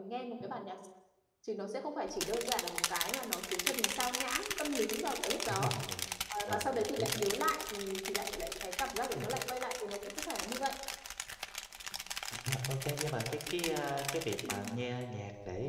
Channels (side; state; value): both; identical; correlation 1.00